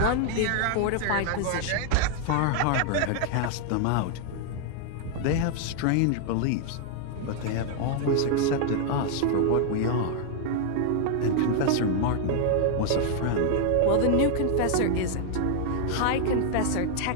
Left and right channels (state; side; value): different; both; correlation 0.00